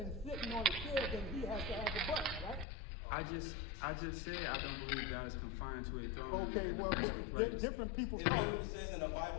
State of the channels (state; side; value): drops out; right; at 2.7 s